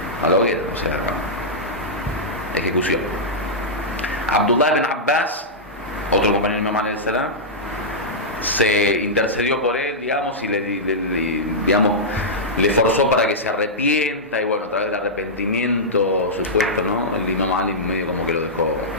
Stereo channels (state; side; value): normal; both; correlation -0.11